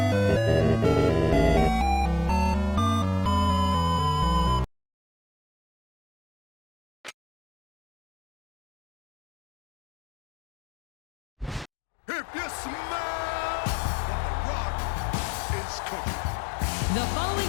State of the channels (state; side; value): drops out; right; at 11.7 s